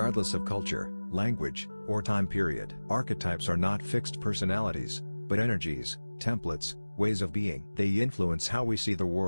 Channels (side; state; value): both; inverted; correlation -1.00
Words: of culture, language, or time period. Archetypes are not fixed personalities, but energies, templates, ways of being. They influence how we see the